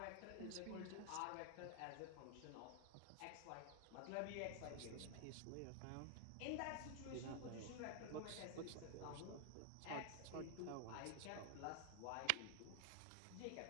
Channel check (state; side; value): different; both; correlation 0.00